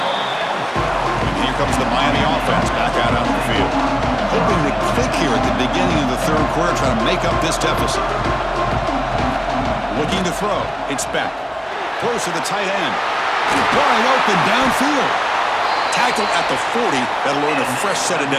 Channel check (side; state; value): both; identical; correlation 1.00